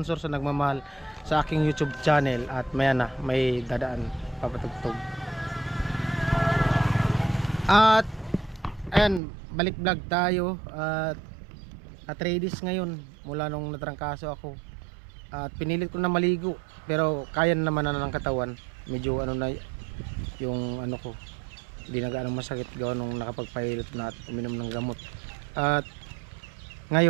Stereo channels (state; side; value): drops out; left; at 9.2 s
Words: sa nagmamahal sa aking YouTube channel. At maya na, may dadaan papatugtog. At ayan, balik vlog tayo at ladies ngayon mula nung natrangkaso ako. At pinilit ko na maligo pero kaya naman na ng katawan. Medyo ano na yung ano ko, hindi na gaano masakit gawa nung nakapagpahilot na at uminom ng gamot. At